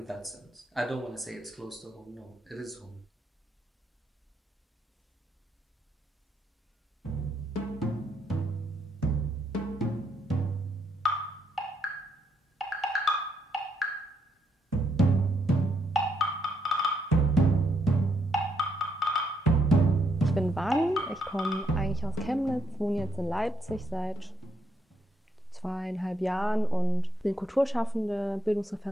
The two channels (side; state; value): both; normal; correlation 0.75